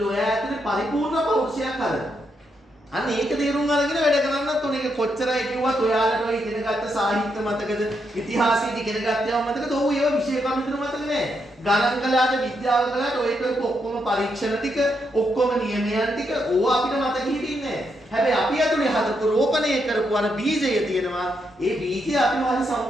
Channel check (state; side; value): normal; both; correlation 0.80